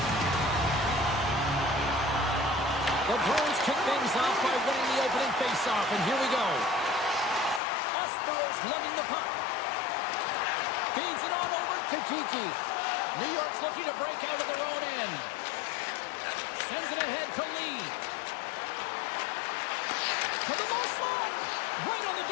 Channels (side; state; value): right; drops out; at 7.6 s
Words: The Bruins kick things off by winning the opening faceoff, and here we go. Espero's lugging the puck. Feeds it on over to Kiki. New York's looking to break out of their own end. Sends it ahead to Lee. To the low slot. Right on the